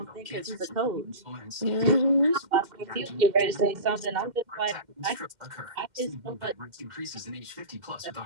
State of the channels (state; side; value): late; left; 2.1 ms